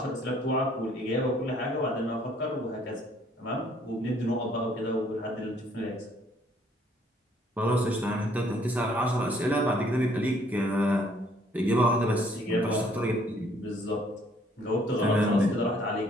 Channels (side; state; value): both; normal; correlation 0.63